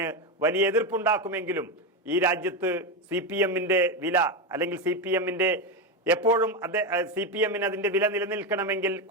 വലിയ എതിർപ്പുണ്ടാക്കുമെങ്കിലും ഈ രാജ്യത്ത് CPMന്റെ വില, അല്ലെങ്കിൽ CPMന്റെ എപ്പോഴും CPMന് അതിന്റെ വില നിലനിൽക്കണമെങ്കിൽ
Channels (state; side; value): normal; both; correlation 0.12